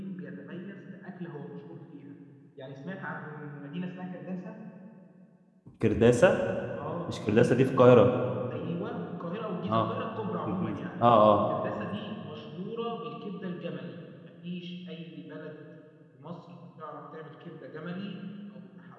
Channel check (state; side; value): identical; both; correlation 1.00